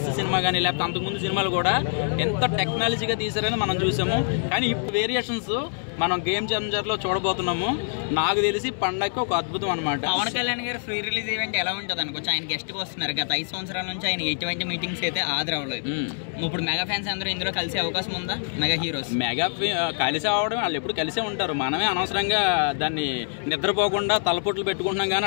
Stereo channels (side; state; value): right; silent; 62 dB below the other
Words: సినిమా కానీ లేకపోతే అంతకుముందు సినిమాలు కూడా ఎంత టెక్నాలజీగా తీసారని మనం చూసాము. కానీ ఇప్పుడు వేరియేషన్స్ మనం గేమ్ చేంజర్లో చూడబోతున్నాము. నాకు తెలిసి పండగకి ఒక అద్భుతం అనమాట. పవన్ కళ్యాణ్ గారు ఫ్రీ రిలీజ్ ఈవెంట్ ఎలా ఉంటుంది అనుకోవచ్చు? ఆయన గెస్ట్గా వస్తున్నారు. గత 5 సంవత్సరాల నుంచి ఆయన ఎటువంటి మీటింగ్స్ అయితే హాజరవ్వలేదు. ఇప్పుడు మెగా ఫ్యాన్స్ అందరూ ఇందులో కలిసే అవకాశం ఉందా? మెగా హీరోస్ కలిసి అవడం, వాళ్ళు ఎప్పుడు కలిసే ఉంటారు. మనమే అనవసరంగా దాన్ని నిద్రపోకుండా తలపొట్లు పెట్టుకుంటున్నాం. కానీ